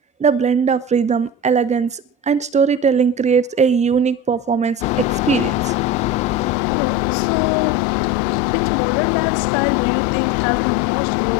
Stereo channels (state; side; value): drops out; right; at 6.6 s